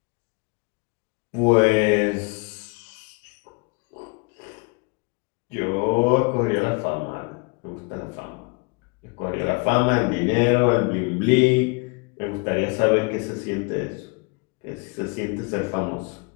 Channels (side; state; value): right; quieter; 31.6 dB